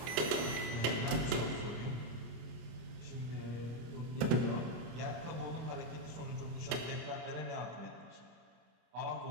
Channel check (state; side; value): late; left; 26 ms